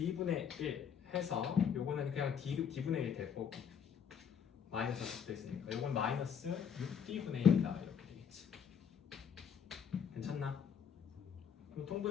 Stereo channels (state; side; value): quieter; right; 7.4 dB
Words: 1 해서 요거는 그냥 D분의 1 될 거고 마이너스가 붙어 있으니까 요건 마이너스 6D분의 1이다 이렇게 되겠지. 괜찮나? 그럼